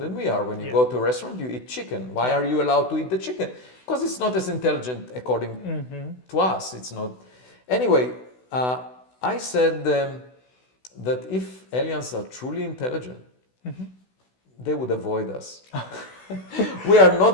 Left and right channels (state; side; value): late; right; 16 ms